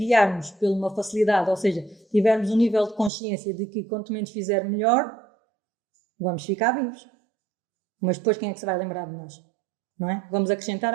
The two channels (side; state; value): left; drops out; at 3.1 s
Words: por uma facilidade, ou seja, tivermos um nível de consciência de que quanto menos fizer melhor, vamos ficar vivos. Mas depois quem é que se vai lembrar de nós? Não é? Vamos acrescentar